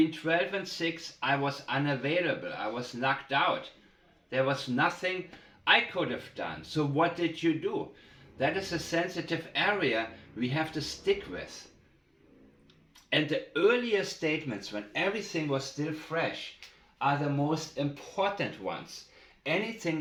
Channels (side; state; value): both; identical; correlation 1.00